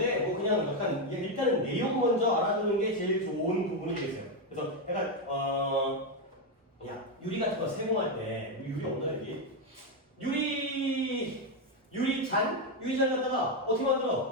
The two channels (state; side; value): normal; both; correlation 0.05